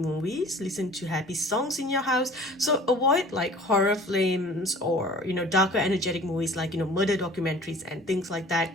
listen to happy songs in your house. So avoid like horror films or, darker energetic movies like, murder documentaries and things like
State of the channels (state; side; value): normal; both; correlation 0.46